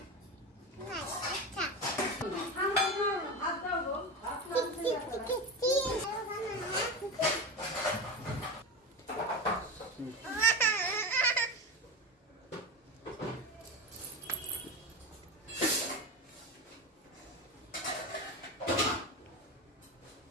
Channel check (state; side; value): normal; both; correlation 0.22